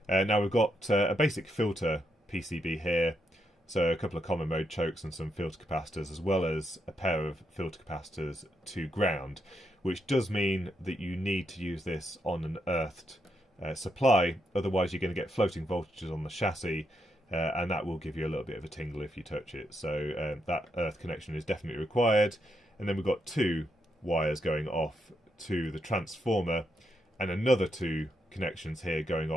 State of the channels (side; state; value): both; normal; correlation 0.81